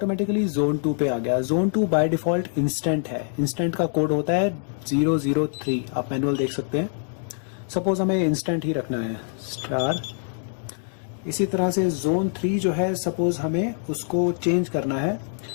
जोन 2 पे आ गया। जोन 2 बाय डिफ़ॉल्ट इंस्टेंट है, इंस्टेंट का कोड होता है 003, आप मैनुअल देख सकते हैं। सपोज हमें इंस्टेंट ही रखना है, स्टार। इसी तरह से जोन 3 जो है, सपोज हमें उसको चेंज करना है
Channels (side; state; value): right; silent; 62 dB below the other